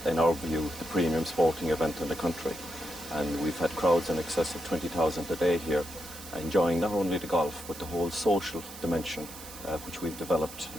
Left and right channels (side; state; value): right; noise; hiss, 14 dB below the sound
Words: in our view, the premium sporting event in the country, and we've had crowds in excess of 20,000 a day here, enjoying not only the golf but the whole social dimension which we've developed